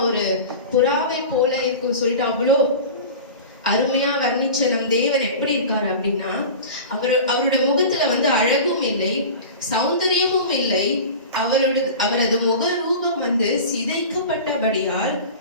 ஒரு புறாவை போல இருக்கும் சொல்லிட்டு அவ்வளோ அருமையா வர்ணிச்ச நம் தேவன் எப்படி இருக்காரு அப்படின்னா, அவரோட முகத்துல அழகும் இல்லை, சௌந்தரியமும் இல்லை, அவரது முக ரூபம் சிதைக்கப்பட்டபடியால்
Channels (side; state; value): both; inverted; correlation -0.34